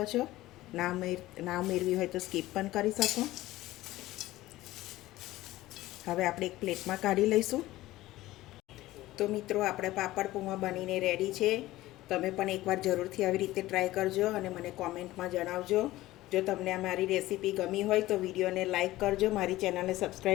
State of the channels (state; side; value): quieter; right; 16.8 dB